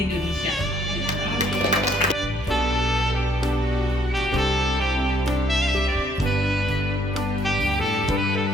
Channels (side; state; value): both; normal; correlation 0.68